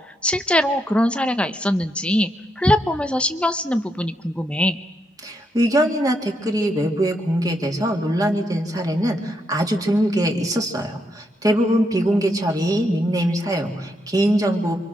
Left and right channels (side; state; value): both; normal; correlation 0.79